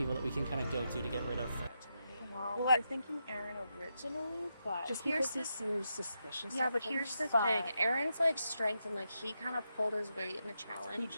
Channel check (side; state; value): both; inverted; correlation -0.85